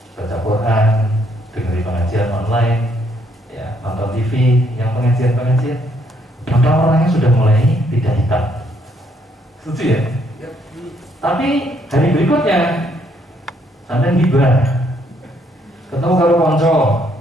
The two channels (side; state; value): both; normal; correlation 0.70